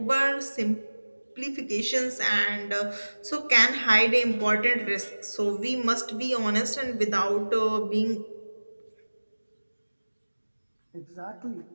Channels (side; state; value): both; inverted; correlation -1.00